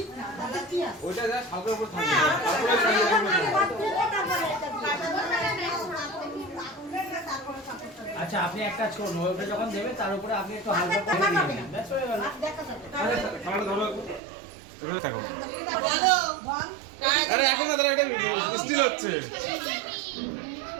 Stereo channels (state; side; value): drops out; left; at 14.2 s